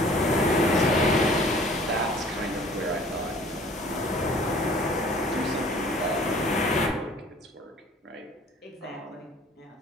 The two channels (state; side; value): normal; both; correlation 0.51